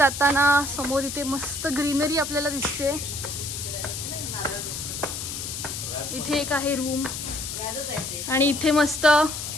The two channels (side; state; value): left; noise; hiss, 6 dB below the sound